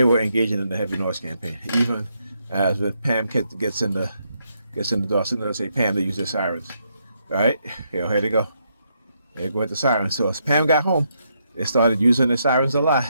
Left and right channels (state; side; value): inverted; both; correlation -0.78